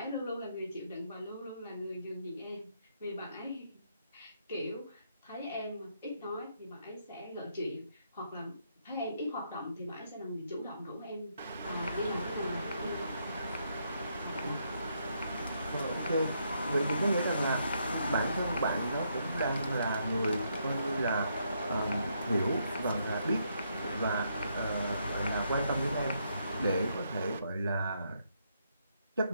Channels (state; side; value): inverted; both; correlation -0.76